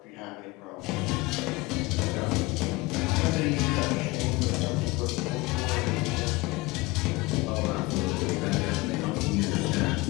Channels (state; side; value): quieter; right; 22.5 dB